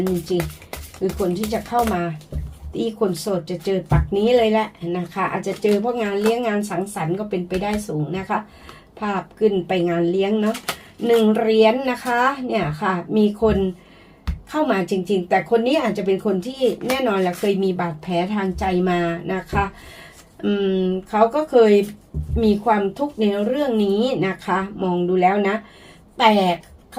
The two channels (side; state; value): both; identical; correlation 1.00